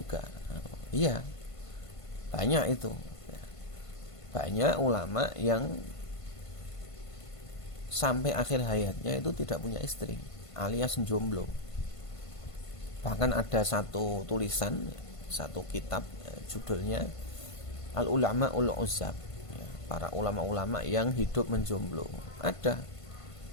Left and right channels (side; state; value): right; late; 1.5 ms